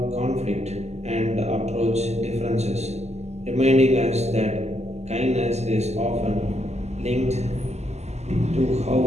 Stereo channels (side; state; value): left; late; 0.32 ms